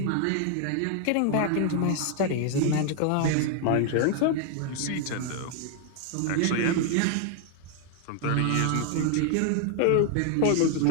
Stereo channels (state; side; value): different; both; correlation 0.00